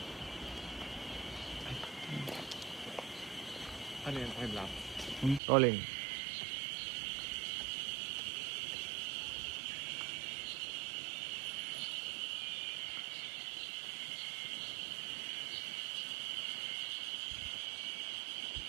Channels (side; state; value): left; drops out; at 5.4 s